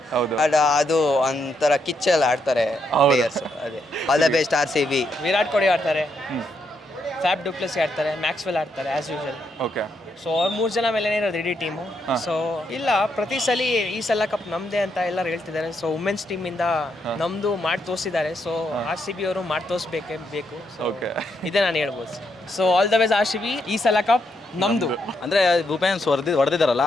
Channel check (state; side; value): normal; both; correlation 0.78